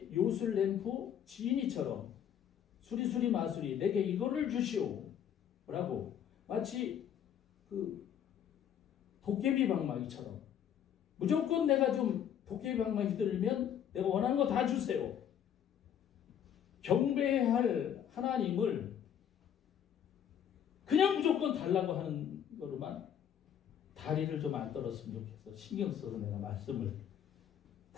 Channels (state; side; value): quieter; right; 9.3 dB